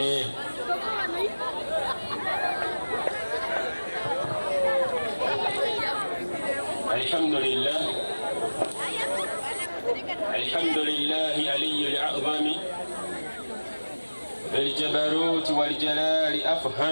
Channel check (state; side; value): inverted; both; correlation -1.00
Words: الحمد لله علي الأعظم بالجبروت والجلال